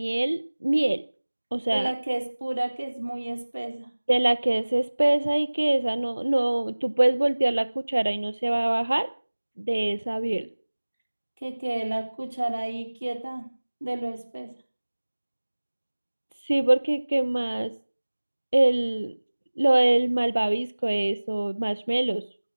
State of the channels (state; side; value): inverted; both; correlation -1.00